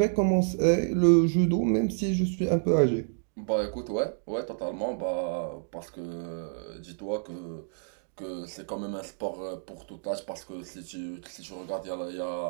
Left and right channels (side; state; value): left; silent; digital silence